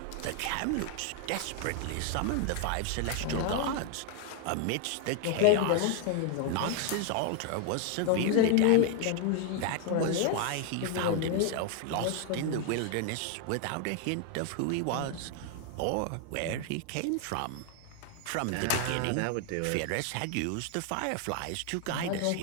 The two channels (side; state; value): both; different; correlation 0.00